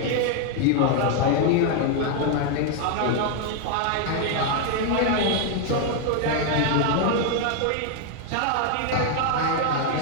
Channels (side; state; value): both; different; correlation 0.00